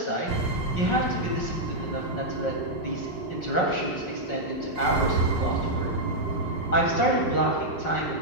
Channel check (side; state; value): right; late; 5.4 ms